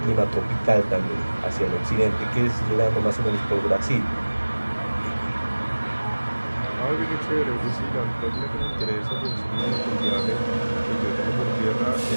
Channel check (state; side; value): inverted; both; correlation -1.00